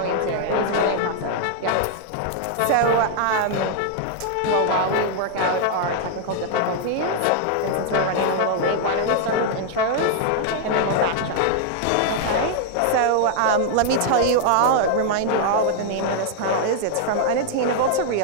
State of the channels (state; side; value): different; both; correlation -0.01